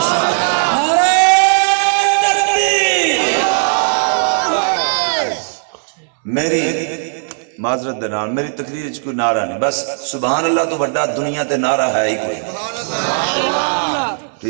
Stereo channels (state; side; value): silent; left; digital silence